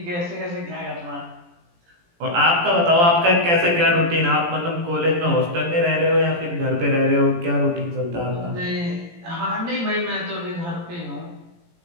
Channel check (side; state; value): left; late; 17 ms